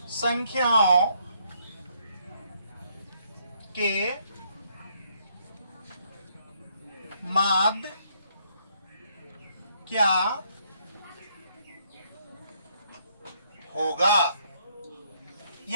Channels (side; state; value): both; inverted; correlation -0.70